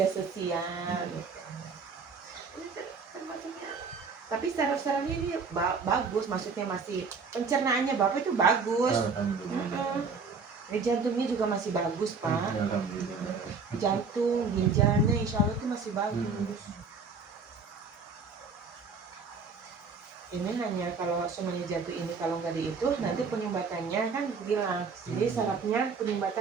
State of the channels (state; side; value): quieter; left; 4.9 dB